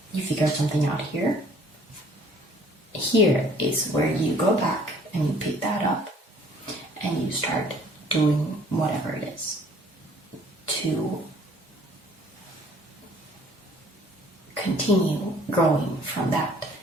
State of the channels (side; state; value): both; normal; correlation 0.57